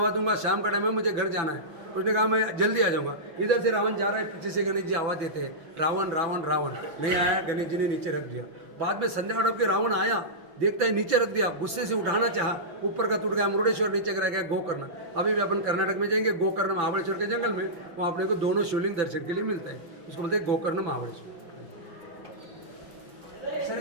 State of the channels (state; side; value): late; left; 5.9 ms